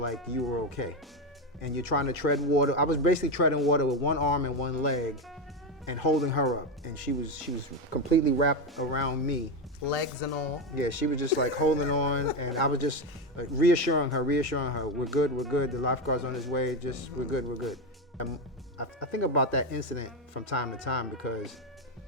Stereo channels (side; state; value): both; normal; correlation 0.11